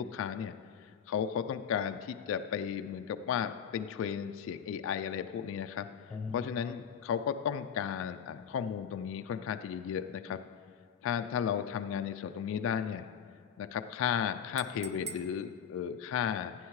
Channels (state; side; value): quieter; right; 7.8 dB